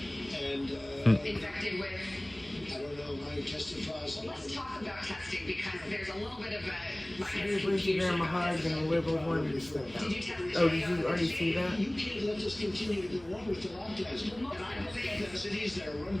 and infected with? I don't know, I tested positive. Well, let's talk about testing, because there's a little bit of a, She gave Lindsey Graham a hug and the liberals wanted to step down. Did you test Oh, did you already see that? You can't let this continue to go on with the lockdowns. And I believe that cities that are run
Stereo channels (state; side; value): noise; right; hum, 23 dB below the sound